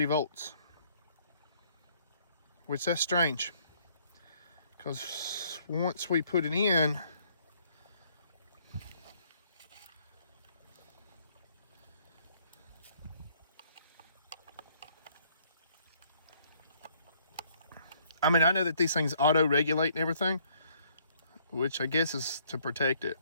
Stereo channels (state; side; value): inverted; both; correlation -0.64